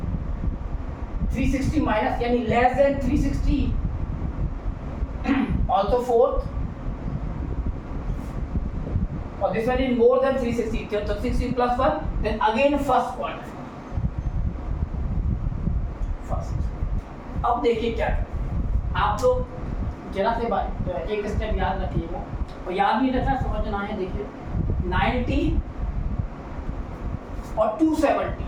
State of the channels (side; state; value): both; identical; correlation 1.00